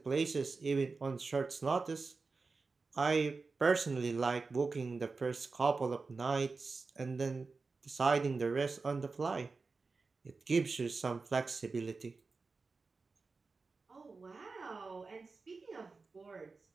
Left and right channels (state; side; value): quieter; left; 4.2 dB